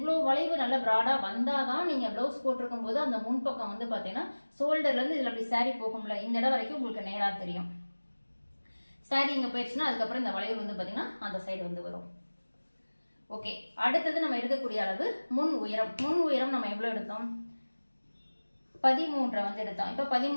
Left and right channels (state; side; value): inverted; both; correlation -1.00